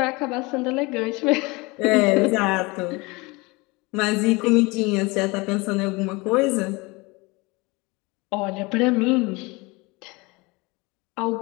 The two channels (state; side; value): quieter; right; 25.1 dB